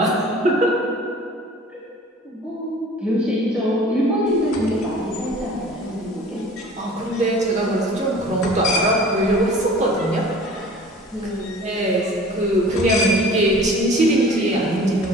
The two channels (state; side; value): normal; both; correlation 0.45